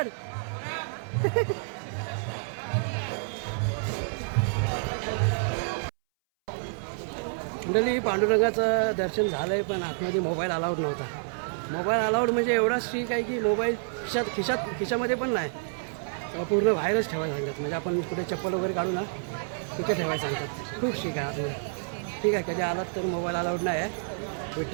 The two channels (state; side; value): silent; left; 59 dB below the other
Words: मंडळी पांडुरंगाचं दर्शन झालंय पण आतमध्ये मोबाईल अलाउड नव्हता. मोबाईल अलाउड म्हणजे एवढा स्ट्रिक आहे की मोबाईल खिशामध्ये पण नाही, पूर्ण बाहेरच ठेवायला सांगतात. म्हणजे आपण कुठे चप्पल वगैरे काढू ना तिथे ठेवायला सांगतात. खूप स्ट्रिक आहे आतमध्ये. ठीक आहे, कधी आलात तर मोबाईल अलाउड नाही आहे